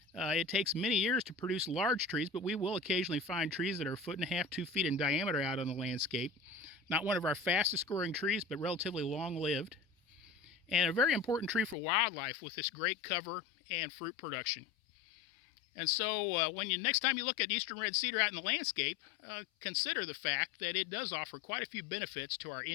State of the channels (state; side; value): drops out; right; at 11.8 s